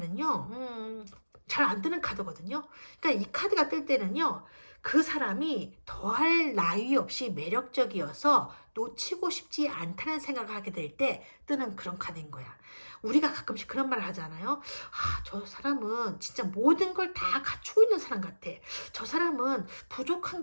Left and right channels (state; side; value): inverted; both; correlation -1.00